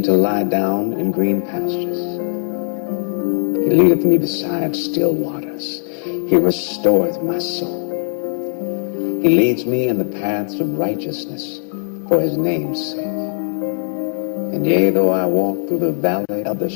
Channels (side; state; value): right; silent; digital silence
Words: to lie down in green pastures. He leadeth me beside still waters. He restoreth my soul. He leads me in the paths of righteousness for his name's sake. And yea, though I walk through the valley of the